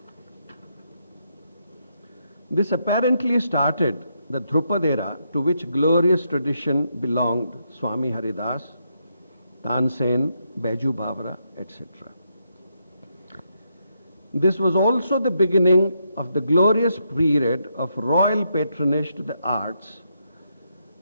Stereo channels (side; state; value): both; inverted; correlation -0.79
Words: This apparently started the Dhrupad era, to which glorious tradition belonged Swami Haridas, Tansen, Baiju Bavra, etc. This was also the beginning of the glorious period of royal patronage to the arts,